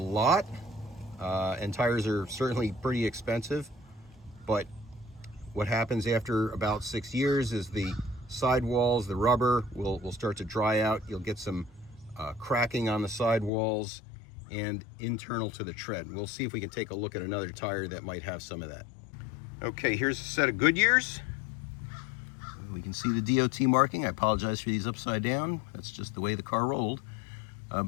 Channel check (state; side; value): drops out; right; at 13.5 s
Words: and tires are certainly pretty expensive, but what happens after about 6 years is the sidewalls, the rubber will start to dry out. You'll get some cracking on the sidewalls and internal to the tread. We'll see if we can take a look at another tire that might have some of that. Okay, here's a set of Goodyears. We can see the DOT marking. I apologize for these upside down. That's just the way the car rolled.